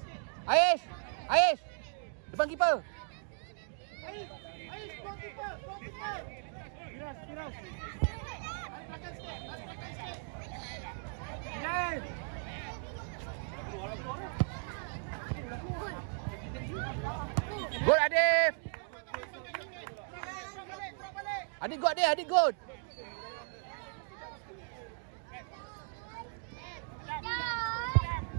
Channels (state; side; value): silent; left; 54 dB below the other